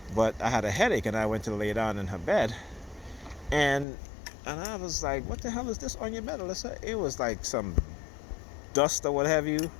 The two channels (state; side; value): drops out; right; at 3.9 s